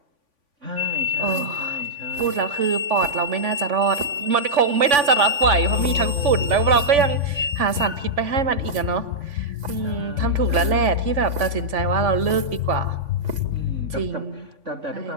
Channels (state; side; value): late; left; 3.5 ms